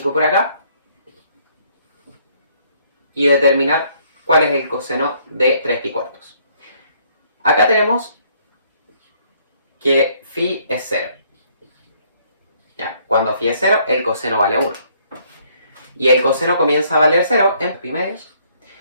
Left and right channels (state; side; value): inverted; both; correlation -0.65